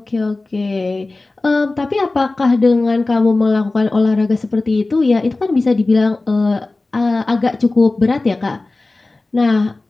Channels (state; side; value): quieter; right; 3.2 dB